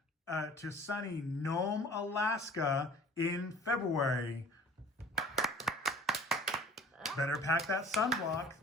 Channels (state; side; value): normal; both; correlation 0.48